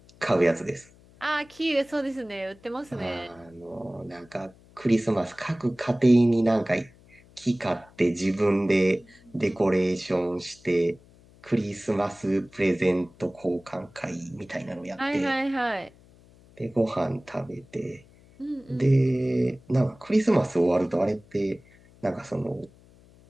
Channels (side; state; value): left; noise; hum, 26 dB below the sound